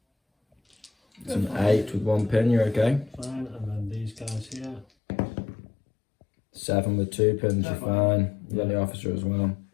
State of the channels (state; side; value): drops out; right; at 4.9 s